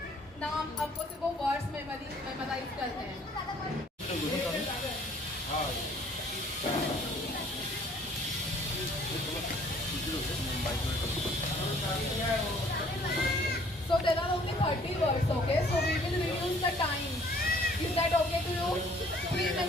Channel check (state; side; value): normal; both; correlation 0.57